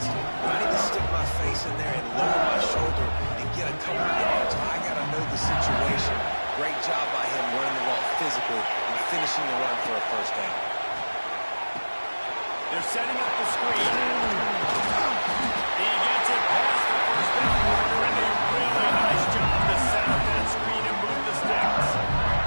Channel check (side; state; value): both; inverted; correlation -1.00